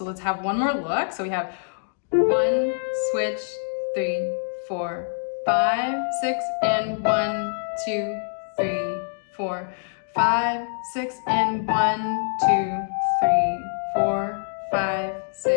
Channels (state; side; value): silent; right; digital silence